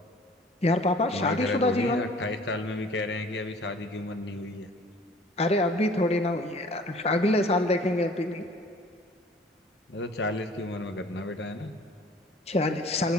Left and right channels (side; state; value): both; normal; correlation 0.51